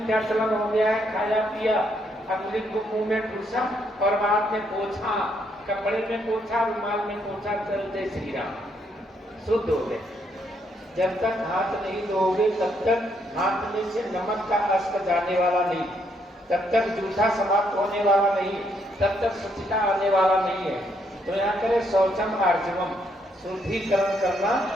क्या चलन हो गया है, खाया पिया, अगले को मुंह में ठूसा और बाद में पोछा, कपड़े में पोछा, रुमाल में पोछा, चलते श्री राम। शुद्ध हो गए। जब तक हाथ नहीं धोगे तब तक हाथ में से नमक का अस्क जाने वाला नहीं, तब तक जूठा समाप्त होने वाला नहीं, तब तक स्वच्छता आने वाला नहीं है। तो यहाँ करें शौचम आर्जवम, शुद्धिकरण करना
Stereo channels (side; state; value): both; normal; correlation 0.73